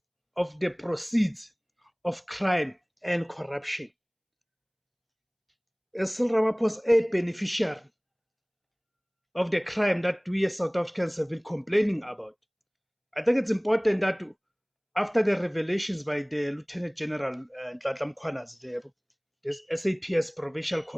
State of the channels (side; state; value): both; identical; correlation 1.00